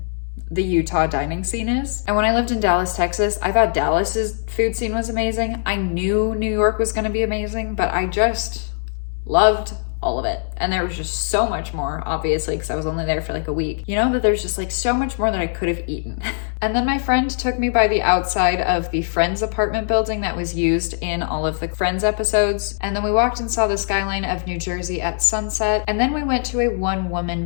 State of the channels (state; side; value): silent; right; 65 dB below the other